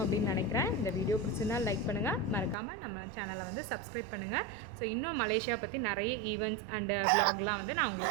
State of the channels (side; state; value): left; drops out; at 2.6 s